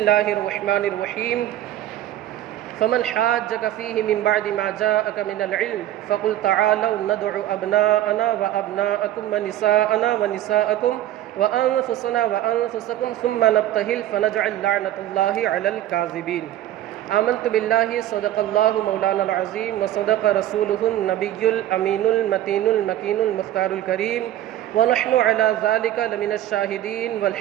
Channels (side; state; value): left; quieter; 13.0 dB